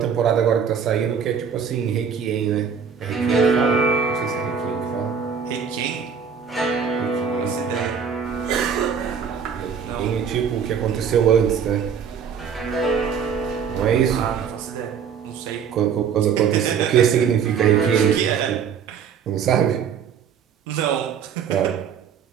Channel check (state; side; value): quieter; left; 7.0 dB